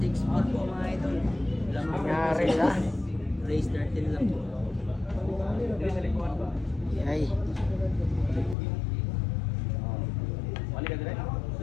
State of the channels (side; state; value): right; drops out; at 8.6 s